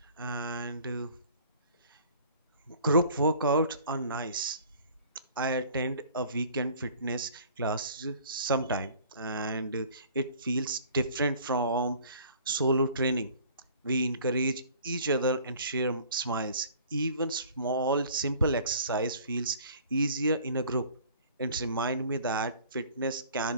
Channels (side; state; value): both; inverted; correlation -0.51